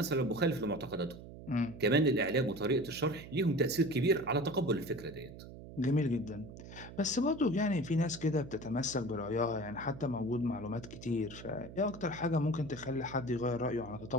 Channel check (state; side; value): noise; right; hum, 14 dB below the sound